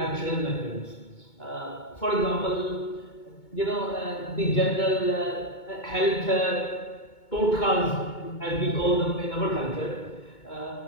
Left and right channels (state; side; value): late; right; 2.2 ms